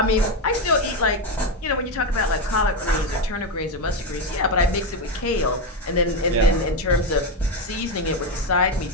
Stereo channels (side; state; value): both; normal; correlation 0.11